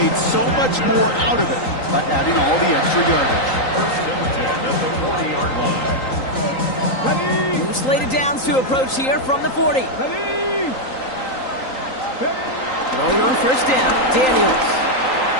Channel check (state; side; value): late; right; 3.9 ms